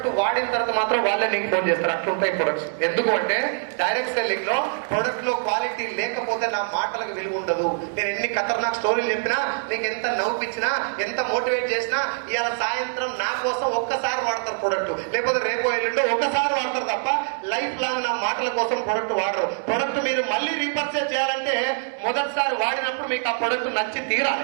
వాడిన తర్వాత మాత్రం వాళ్ళే నీకు ఫోన్ చేస్తారు అట్లుంటాయి ప్రొడక్ట్స్ ఎందుకు అంటే డైరెక్ట్ సెల్లింగ్ లో ప్రొడక్ట్ లో క్వాలిటీ లేకపోతే నా మాటలకు విలువ ఉండదు నేను ఎన్ని ఖతర్నాక్ స్టోరీలు చెప్పినా నీకు ఎంత నవ్వుపించినా ఎంత మోటివేట్ చేసినా ఇవాళ సాయంత్రం నా కోసం ఒక్కసారి వాడతారు ప్రొడక్ట్ లేకపోతే రేపు ఎల్లుండో ఒక్కసారి వాడతారు తప్ప లైఫ్ లాంగ్ నా మాటల కోసం ప్రొడక్ట్ వాడరు ప్రొడక్ట్ మీరు మళ్ళీ రీపర్చేజ్ చేయాలంటే మొదటిసారి వాడినప్పుడు మీకు ఆ ప్రొడక్ట్ నచ్చి తీరాలి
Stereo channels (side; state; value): left; silent; digital silence